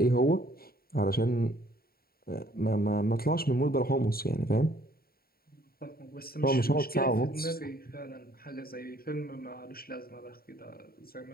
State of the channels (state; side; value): late; right; 0.44 ms